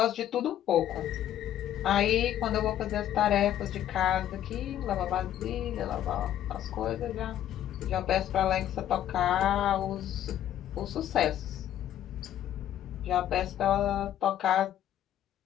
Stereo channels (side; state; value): right; quieter; 11.4 dB